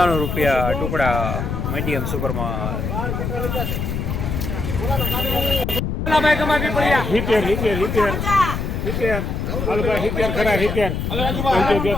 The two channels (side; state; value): left; noise; rumble, 2 dB below the sound